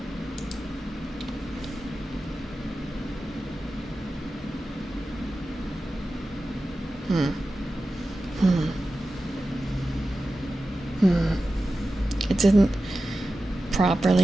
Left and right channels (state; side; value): normal; both; correlation 0.94